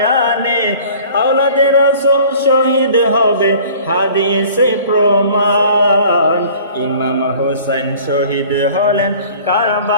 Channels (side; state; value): both; inverted; correlation -0.48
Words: আওলাদে রাসূল শহীদ হবে হাদিসে প্রমাণ। ইমাম হোসেন শহীদ হলেন